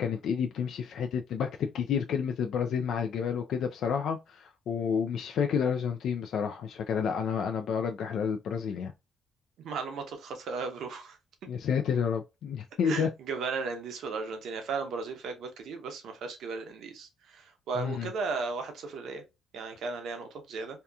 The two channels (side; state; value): right; quieter; 4.1 dB